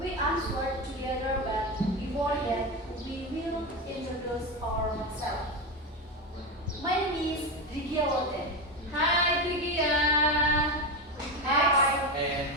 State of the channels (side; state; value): both; normal; correlation 0.16